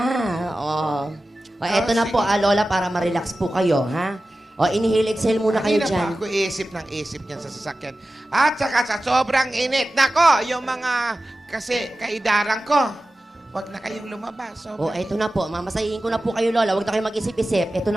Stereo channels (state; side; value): normal; both; correlation 0.95